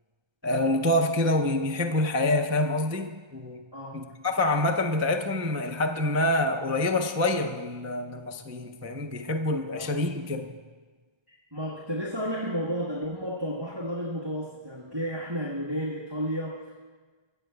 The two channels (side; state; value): left; late; 1.3 ms